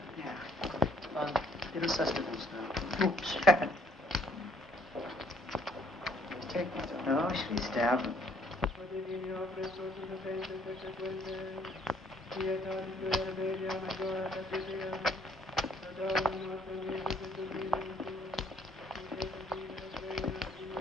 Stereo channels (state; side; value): normal; both; correlation 0.64